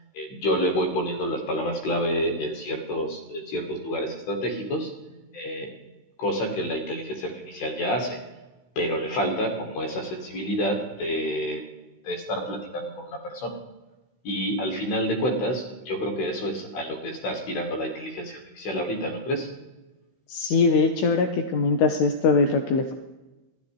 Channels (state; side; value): late; right; 16 ms